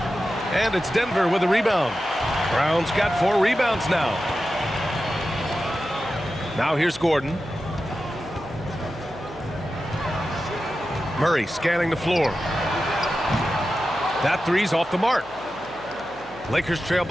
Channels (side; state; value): right; noise; hum, 24 dB below the sound